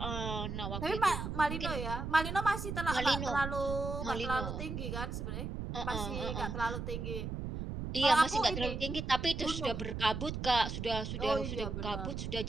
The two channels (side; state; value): right; noise; rumble, 4 dB below the sound